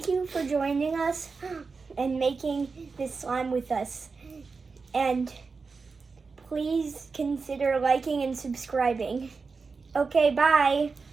you for joining us and making this slime with us. And please consider liking and subscribing. Okay, bye.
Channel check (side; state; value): left; quieter; 4.6 dB